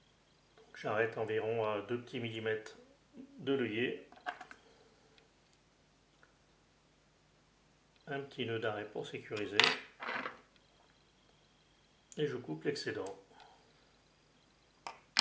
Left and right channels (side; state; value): both; identical; correlation 1.00